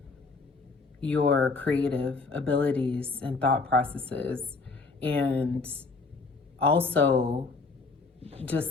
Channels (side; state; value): right; quieter; 4.1 dB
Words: your creative abilities and thought processes, and also